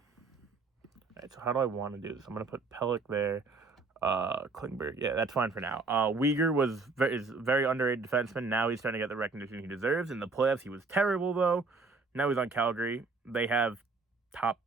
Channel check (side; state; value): left; quieter; 3.9 dB